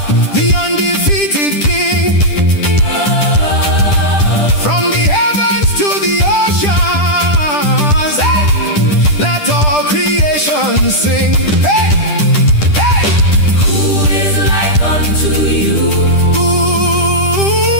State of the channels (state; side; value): late; right; 10 ms